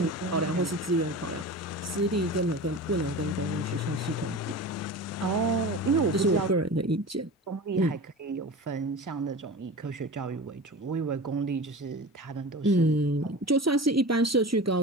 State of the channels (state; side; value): normal; both; correlation 0.33